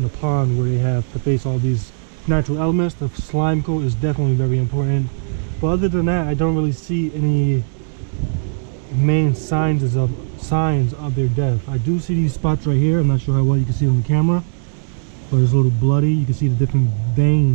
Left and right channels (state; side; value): silent; left; 67 dB below the other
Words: a pond where they have to face all these natural elements. The slime coat is definitely very important. But other than that, I don't really see any main signs of their death. I do see these spots right here. I'm not sure how well you can see it on the camera, but it's a little bloody. You can see the different